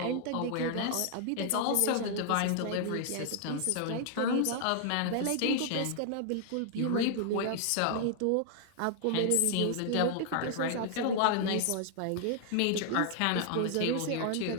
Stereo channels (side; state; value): both; different; correlation 0.00